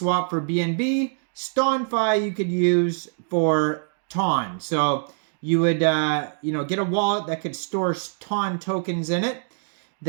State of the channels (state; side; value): silent; left; digital silence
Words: for BNB. Stonfi you could use for Ton. So you would get a wallet that could store Ton tokens in it.